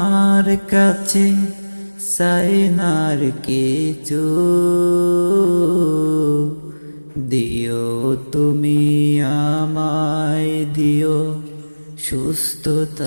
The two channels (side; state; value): both; inverted; correlation -1.00